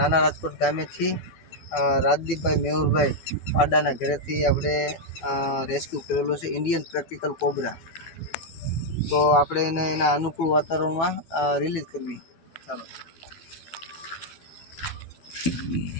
રાજકોટ ગામેથી રાજદીપભાઈ મેહુરભાઈ પાડાના ઘરેથી આપણે રેસ્ક્યુ કરેલો છે ઇન્ડિયન પ્રેક્ટિકલ કોબરા. તો આપણે એને એના અનુકૂળ વાતાવરણમાં રિલીઝ કરવી. ચાલો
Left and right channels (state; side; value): late; right; 12 ms